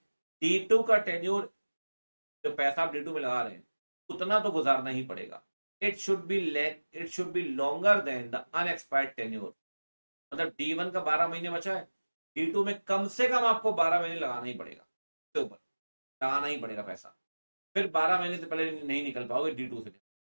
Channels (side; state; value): both; inverted; correlation -1.00